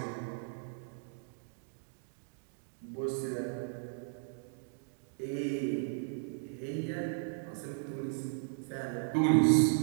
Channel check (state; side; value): silent; left; digital silence